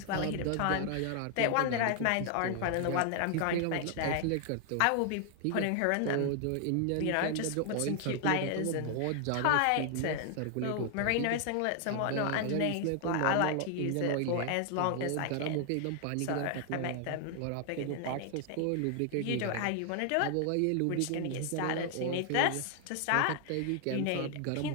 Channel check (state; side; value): different; both; correlation 0.00